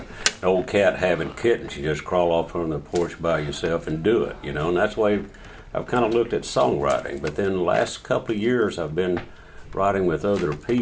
old cat having kittens. You just crawl off on the porch by yourself and do it, and that's the way I've kind of looked at songwriting. But then the last couple of years I've been writing with other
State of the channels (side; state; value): both; identical; correlation 1.00